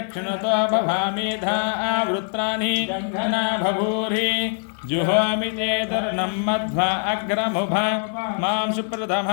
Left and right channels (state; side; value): silent; right; 64 dB below the other